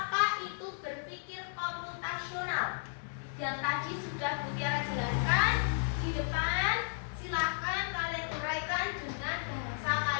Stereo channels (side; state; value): right; silent; digital silence